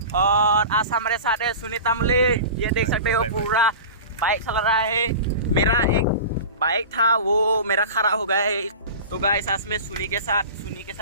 और आज हमारे साथ है सुनीता मुले। ये देख सकते हो पूरा बाइक चला रहा है। मेरा एक बाइक था वो मेरा खराब हो गया है। तो गाइस आज मैं सुनी के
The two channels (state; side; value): inverted; both; correlation -0.34